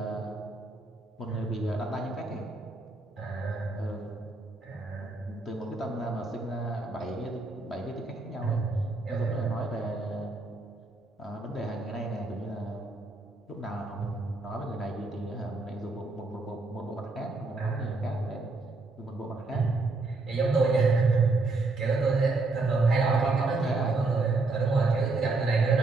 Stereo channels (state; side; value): quieter; left; 3.4 dB